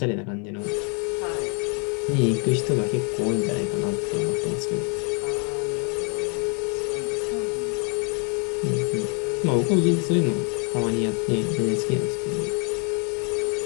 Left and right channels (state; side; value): quieter; right; 36.3 dB